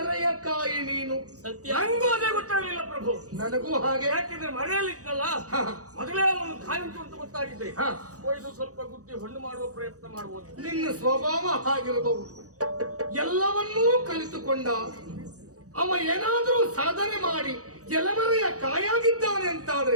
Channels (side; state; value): left; late; 0.66 ms